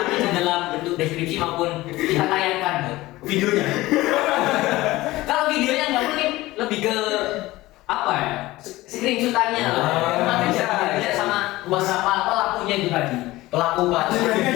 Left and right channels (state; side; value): quieter; right; 18.4 dB